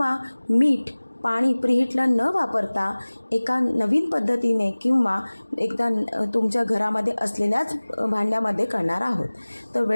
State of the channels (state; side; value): inverted; both; correlation -1.00